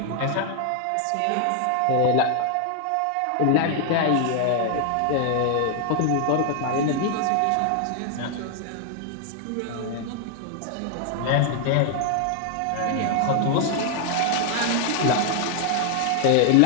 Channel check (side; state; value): both; different; correlation 0.00